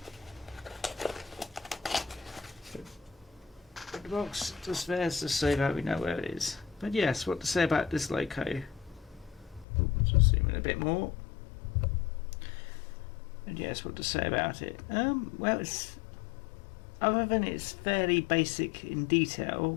The box just there to say that we know where it is. But yes, what to say about this loco? Just zoom in a bit more. And yes, what to say about it? Well, it's, other than it's fairly basic in detail,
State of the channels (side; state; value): right; drops out; at 9.7 s